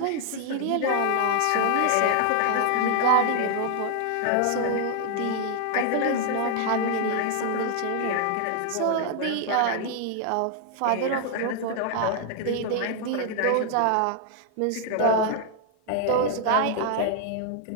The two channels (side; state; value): both; different; correlation 0.00